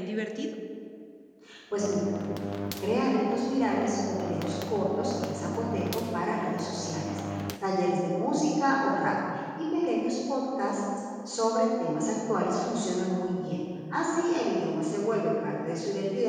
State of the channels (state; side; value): identical; both; correlation 1.00